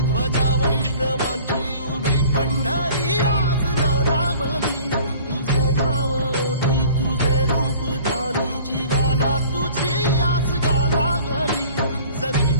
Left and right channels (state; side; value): inverted; both; correlation -0.47